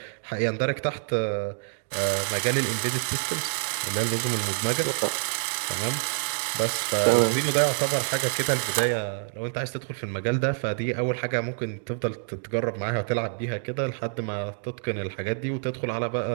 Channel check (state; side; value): silent; left; digital silence